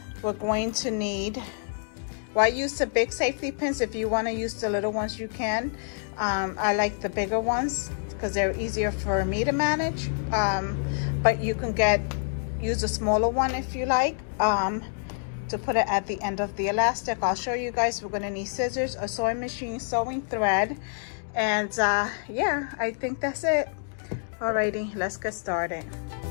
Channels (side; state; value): right; silent; digital silence